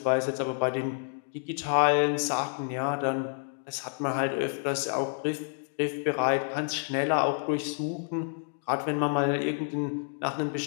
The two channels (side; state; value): right; silent; digital silence